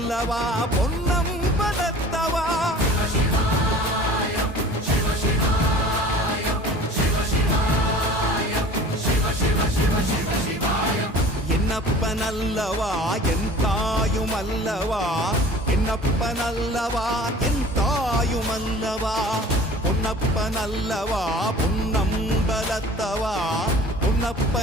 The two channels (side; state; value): both; normal; correlation 0.44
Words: பொன்னம்பலத்தவா. என்னப்பனல்லவா என் தாயுமல்லவா, என்னப்பனல்லவா என் தாயுமல்லவா, பொன்னப்பனல்லவா பொன்னம்பலத்தவா,